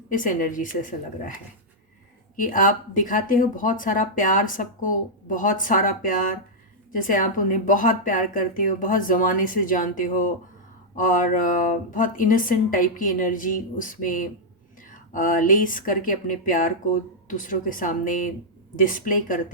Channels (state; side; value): normal; both; correlation -0.07